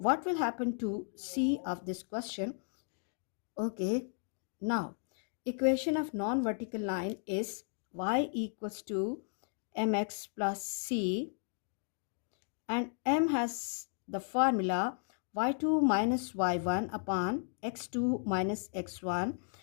will happen to C of this question? Okay, now equation of non-vertical line is y equals to mx plus c, and m has the formula y2 minus y1 upon x2 minus x1,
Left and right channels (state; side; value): silent; right; 55 dB below the other